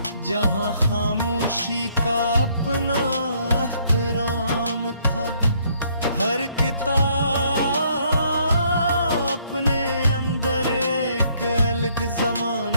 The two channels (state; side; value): inverted; both; correlation -0.67